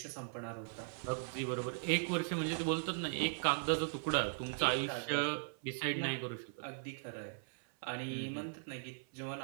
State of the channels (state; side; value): silent; left; 52 dB below the other